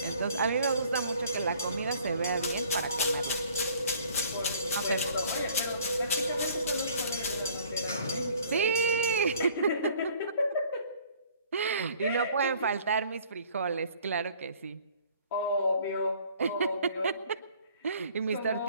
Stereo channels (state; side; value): inverted; both; correlation -0.56